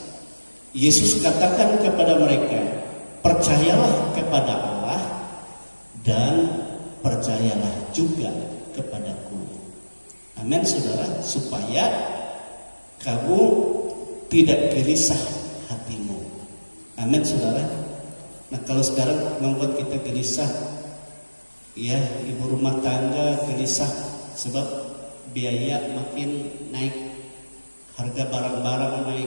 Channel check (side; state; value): both; inverted; correlation -1.00